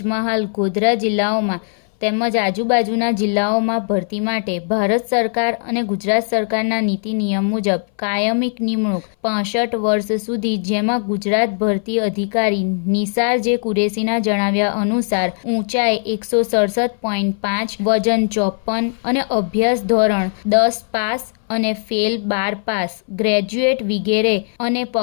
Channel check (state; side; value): silent; right; 61 dB below the other